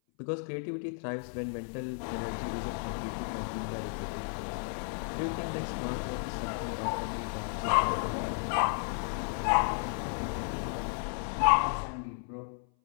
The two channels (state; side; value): silent; right; 56 dB below the other